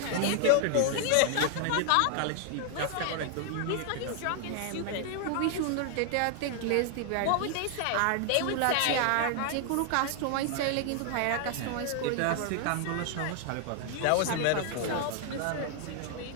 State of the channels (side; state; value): both; different; correlation 0.00